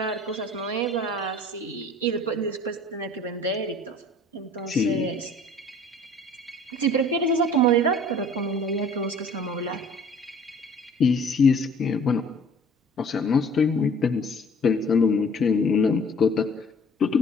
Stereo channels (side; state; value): both; normal; correlation 0.50